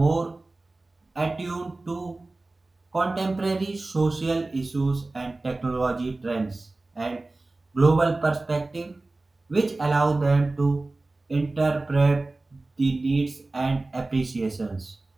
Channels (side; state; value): left; quieter; 3.1 dB